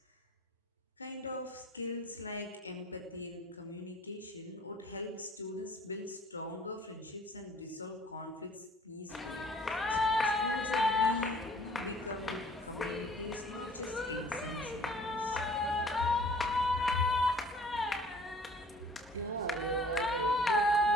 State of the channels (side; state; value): both; normal; correlation 0.53